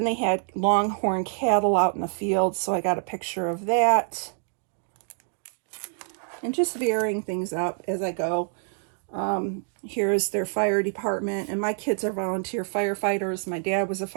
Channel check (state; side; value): silent; left; 61 dB below the other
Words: they had longhorn cattle out in the field, so I got a picture of that. And just varying things up as I go. Here's their fire department, and my kids are volunteer firefighters. My dad was a